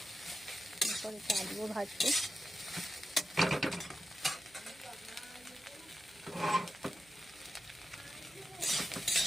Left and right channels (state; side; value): noise; right; hum, 27 dB below the sound